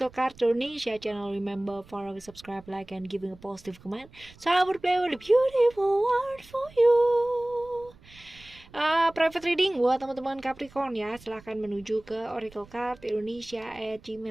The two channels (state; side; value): noise; right; rumble, 24 dB below the sound